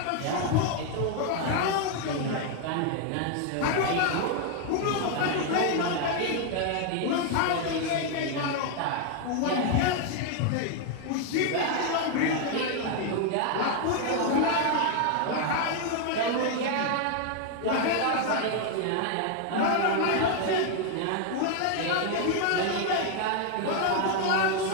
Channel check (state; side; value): different; both; correlation 0.00